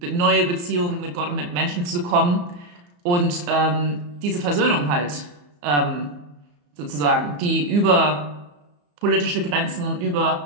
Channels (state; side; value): late; left; 34 ms